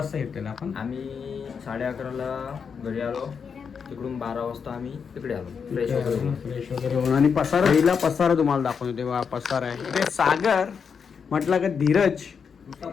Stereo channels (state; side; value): quieter; right; 6.3 dB